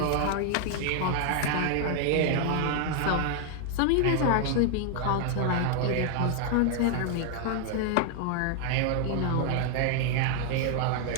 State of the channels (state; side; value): different; both; correlation 0.00